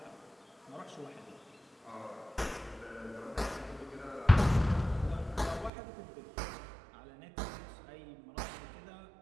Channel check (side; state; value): left; drops out; at 5.7 s